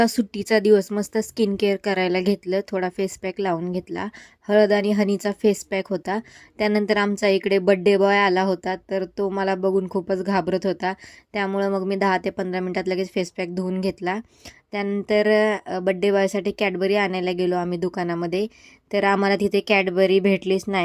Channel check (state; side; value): identical; both; correlation 1.00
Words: सुट्टीचा दिवस. मस्त स्किन केअर करायला घेतलं. थोडा फेस पॅक लावून घेतला. हळद आणि हनीचा फेस पॅक होता. त्यानंतर आमचा इकडे बड्डे बॉय आला होता, तर तो मला बघून खूपच घाबरत होता. त्यामुळं मग मी 10 ते 15 मिनिटात लगेच फेस पॅक धुवून घेतला. त्यानंतर बड्डे बॉयसाठी कॅडबरी आणायला गेलो आम्ही दुकानामध्ये. तर आम्हाला तिथे कॅडबरी भेटलीच